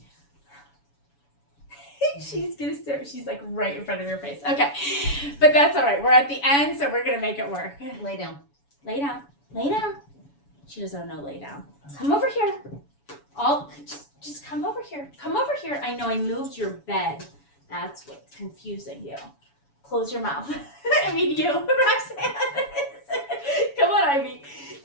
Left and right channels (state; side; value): late; right; 7.1 ms